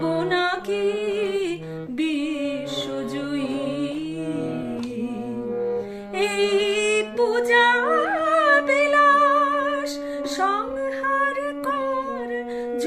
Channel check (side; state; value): both; identical; correlation 1.00